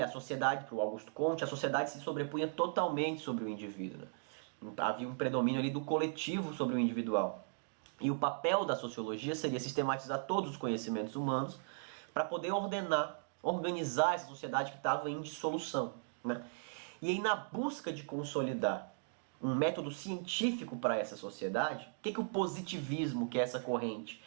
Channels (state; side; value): silent; left; digital silence